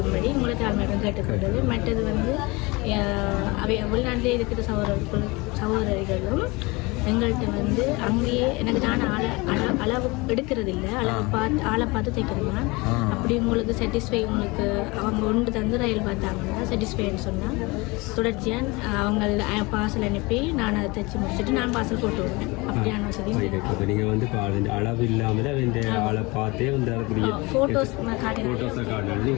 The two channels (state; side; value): quieter; right; 24.8 dB